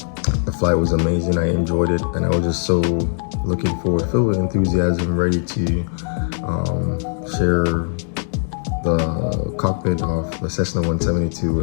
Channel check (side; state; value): right; silent; 59 dB below the other